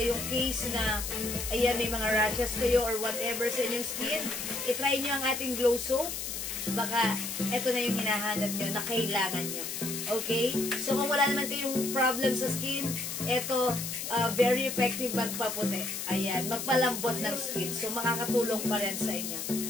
case na, ayan, may mga rashes kayo or whatever sa inyong skin. I-try nyo ang ating Glow Soap. Baka eto na yung hinahanap nyo na kailangan nyo. Okay? So, kung wala naman kayong problem sa skin, eto, very effective magpaputi. Ayan, magpalambot ng skin. So, makakatulong pa rin sa inyo.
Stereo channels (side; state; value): left; noise; hiss, 5 dB below the sound